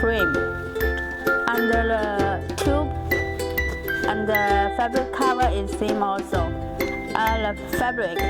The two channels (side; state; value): both; identical; correlation 1.00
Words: And the tube and the fabric cover is same also. The fabric